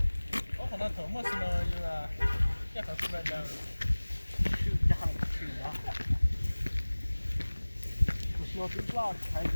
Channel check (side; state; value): both; inverted; correlation -1.00